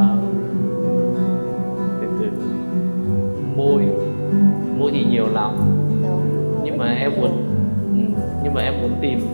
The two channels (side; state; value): both; inverted; correlation -1.00